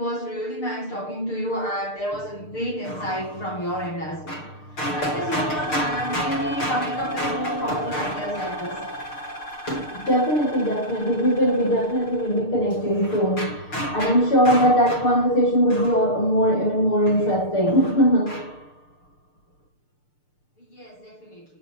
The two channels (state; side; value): late; right; 6.6 ms